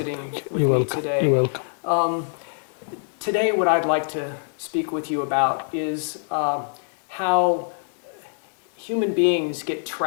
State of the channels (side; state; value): right; silent; digital silence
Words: with me today. Today, what I'd like to speak with you about is how human beings get